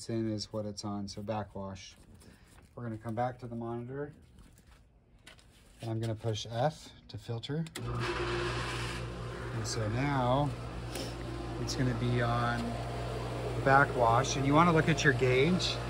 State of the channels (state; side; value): identical; both; correlation 1.00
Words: in is what it's on, so backwash. We're going to come back to the monitor. And I'm going to push F to filter. And so now it's going to be on backwash. And you want to look at your gauge.